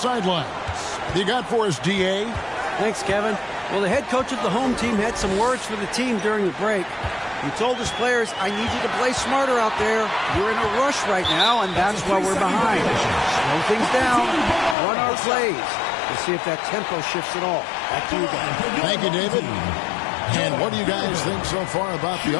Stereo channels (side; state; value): right; drops out; at 14.8 s